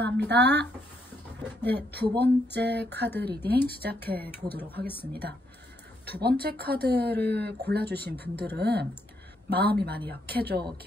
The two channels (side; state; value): both; normal; correlation 0.75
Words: 네, 두 번째 카드 리딩 시작해 보도록 하겠습니다. 두 번째 카드를 골라주신 분들은 마음이 많이 약해져